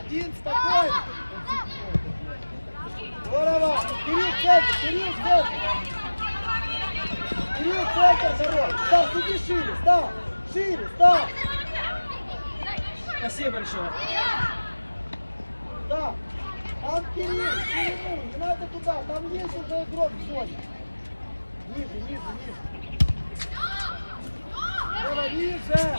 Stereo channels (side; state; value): both; inverted; correlation -1.00